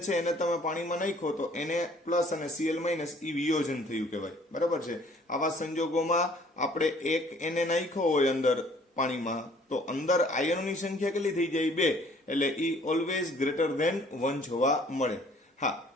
છે એને તમે પાણીમાં નાખો તો Na પ્લસ અને Cl માઇનસ એ વિયોજન થયું કહેવાય. બરાબર છે. આવા સંજોગોમાં આપણે એક Na નાખ્યો હોય અંદર પાણીમાં તો અંદર આયનોની સંખ્યા કેટલી થઈ જાય? 2. એટલે ઈ ઓલવેઝ ગ્રેટર ધેન 1 જોવા મળે. હા,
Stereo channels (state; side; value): normal; both; correlation 0.57